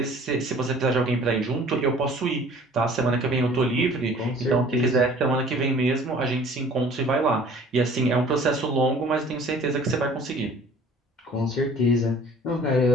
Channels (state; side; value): normal; both; correlation 0.50